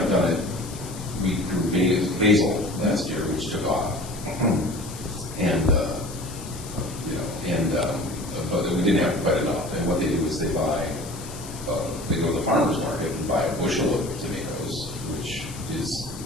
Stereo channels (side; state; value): left; noise; hiss, 14 dB below the sound